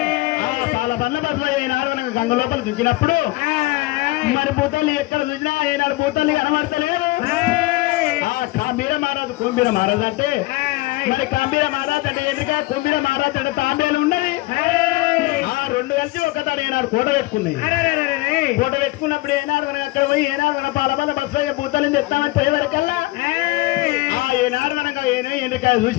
పాల బండ్ల బస్సులో ఏనాడు మనకు గంగ లోపల దుంచినప్పుడు మరి భూతాలు ఎక్కడ చూసినా ఏనాడు భూతాలు కనబడతలేదు కాంబీర మహారాజు కుంబీర మహారాజు అంటే మరి కాంబీర మహారాజు అంటే ఎందుక కుంబీర మహారాజు అంటే తాంబేలు ఉన్నది ఆ రెండు కలిసి ఒకతాడు ఏనాడు కోట పెట్టుకున్నాయి కోట పెట్టుకున్నప్పుడు ఏనాడు మనం అక్కడ పోయి ఏనాడు మన పాలబల్ల బస్సు భూతాలను తెస్తామని పోయేవరకల్లా ఏనాడు మనకు ఎండ్రికాయ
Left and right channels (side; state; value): right; quieter; 20.2 dB